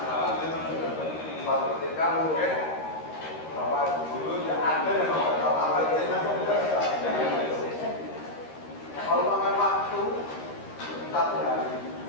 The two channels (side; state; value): right; late; 13 ms